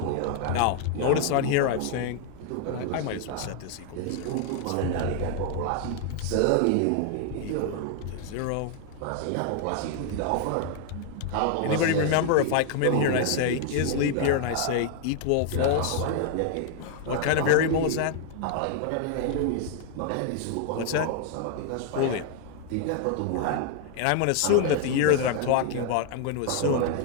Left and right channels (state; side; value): different; both; correlation 0.00